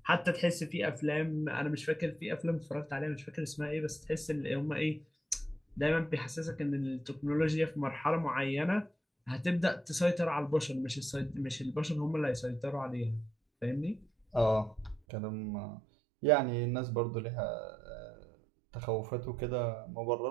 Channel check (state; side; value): drops out; left; at 15.0 s